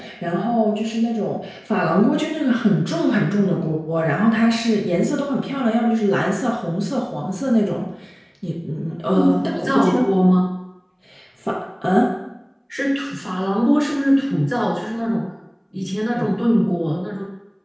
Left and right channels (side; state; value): both; identical; correlation 1.00